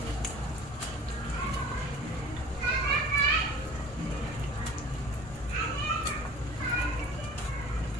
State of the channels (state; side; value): normal; both; correlation 0.44